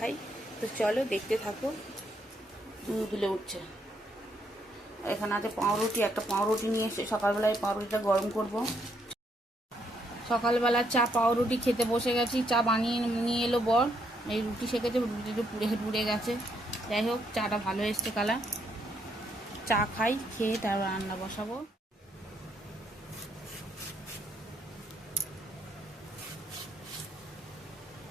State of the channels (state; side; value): normal; both; correlation 0.74